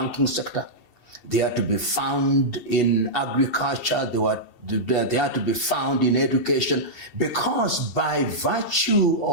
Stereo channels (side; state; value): left; late; 2.7 ms